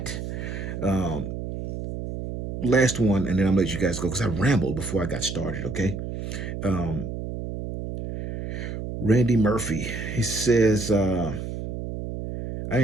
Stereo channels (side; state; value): right; noise; hum, 6 dB below the sound